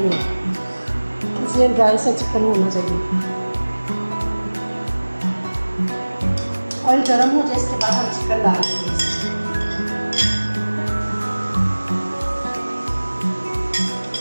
इसलिए ड्राई सा चिकन होना चाहिए। ऑयल गर्म हो जाए इसके बाद हम चिकन डाल देंगे।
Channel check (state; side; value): inverted; both; correlation -1.00